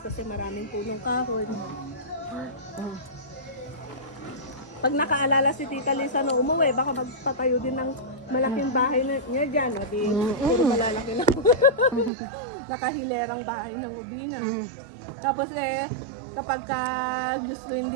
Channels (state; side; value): drops out; left; at 12.1 s